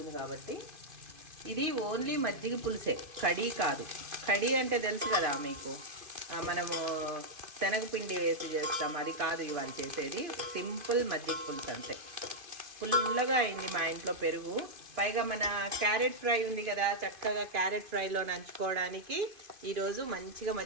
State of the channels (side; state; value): left; late; 2.5 ms